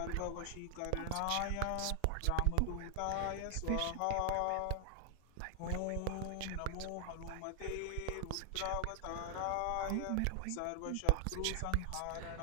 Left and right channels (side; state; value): both; different; correlation 0.00